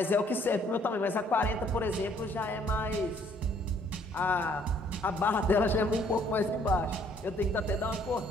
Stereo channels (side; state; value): both; normal; correlation 0.63